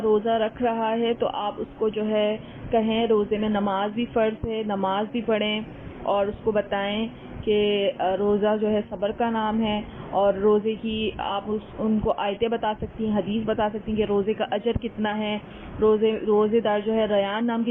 روزہ رکھ رہا ہے تو آپ اس کو جو ہے کہیں روزے میں نماز بھی فرض ہے، نماز بھی پڑھیں، اور اس کو بتائیں کہ روزہ جو ہے صبر کا نام ہے، اور روزے کی آپ ان کو آیتیں بتا سکتی ہیں، حدیث بتا سکتی ہیں کہ روزے کا اجر کتنا ہے، روزے دار جو ہے ریان نام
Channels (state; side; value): identical; both; correlation 1.00